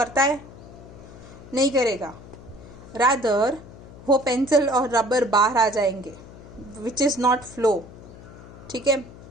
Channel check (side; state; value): left; noise; hum, 17 dB below the sound